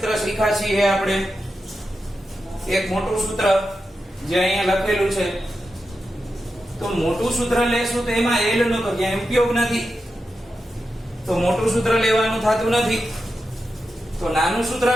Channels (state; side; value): normal; both; correlation 0.89